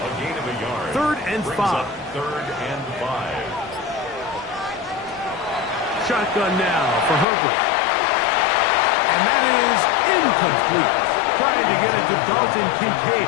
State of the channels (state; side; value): drops out; right; at 7.2 s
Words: gain of a yard. 3rd and 5. 3rd and 5. Shotgun now for Herbert. And that is incomplete. Trying to get it to Dalton